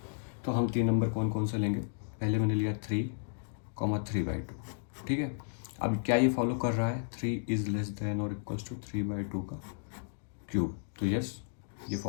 तो हम 3 नंबर कौन कौन से लेंगे। पहले मैंने लिया 3,3/2, ठीक है। अब क्या ये फॉलो कर रहा है, 3 इज लेस देन और इक्वल्स टू 3/2 का क्यूब, तो यस ये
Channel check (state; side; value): silent; right; digital silence